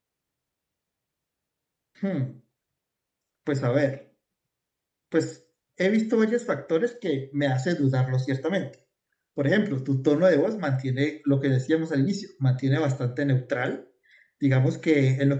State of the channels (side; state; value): both; identical; correlation 1.00